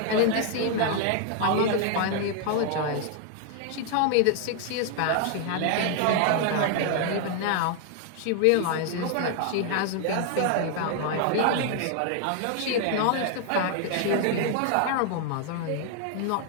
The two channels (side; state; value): both; different; correlation 0.00